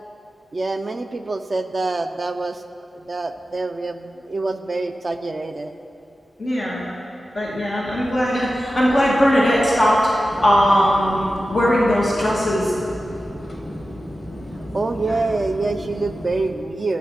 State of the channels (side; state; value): both; normal; correlation 0.93